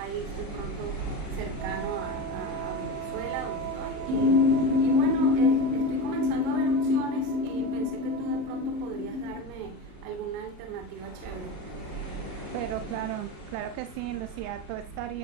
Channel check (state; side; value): late; left; 38 ms